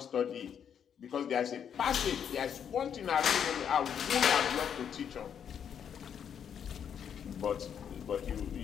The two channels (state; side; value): quieter; right; 8.2 dB